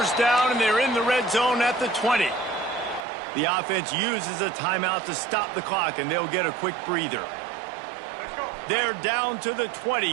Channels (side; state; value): left; drops out; at 3.1 s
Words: down, and they're in the red zone at the 20. The offense uses a timeout to stop the clock, and they'll get a quick breather. They're down to the